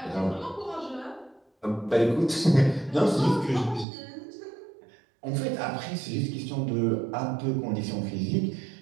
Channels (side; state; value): left; drops out; at 3.9 s